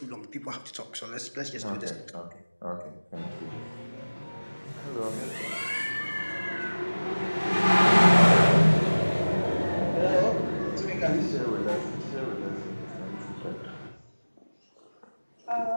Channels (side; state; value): both; inverted; correlation -1.00